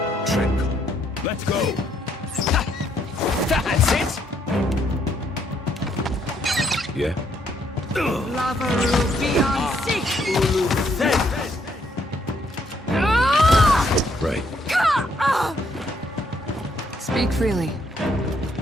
Let's go! That's it! Yeah? Right. Speak freely.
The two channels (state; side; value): normal; both; correlation 0.71